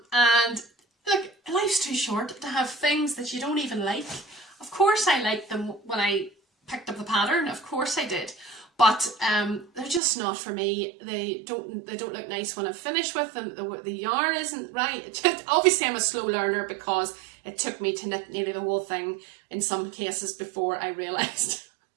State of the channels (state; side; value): drops out; left; at 10.0 s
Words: look, life's too short to have things that you don't even like. Of course I liked them when I picked up the pattern, of course I did, but they're just not for me. They don't look nice when I'm finished with them. The yarn isn't right. Obviously I'm a slow learner because it took me to knit nearly the whole thing in some cases before I realised